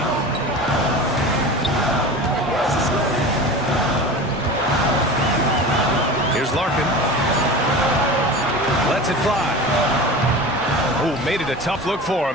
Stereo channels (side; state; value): both; normal; correlation 0.32